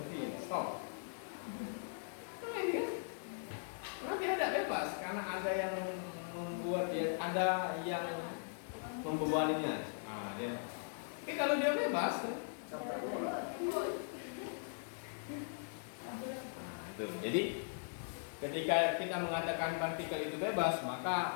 stop. Nah, ini kan? Karena dia tidak bebas karena ada yang membuat dia, ada yang membebaninya. Nah, dia. Tapi kalau dia bebas, itu. Jadi ketika kita mengatakan partikel itu bebas,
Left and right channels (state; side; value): silent; right; digital silence